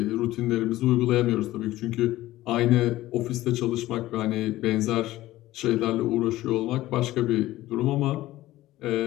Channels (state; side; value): quieter; right; 16.2 dB